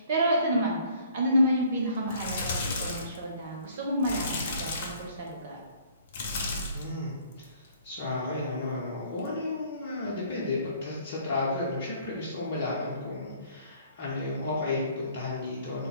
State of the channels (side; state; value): both; inverted; correlation -0.57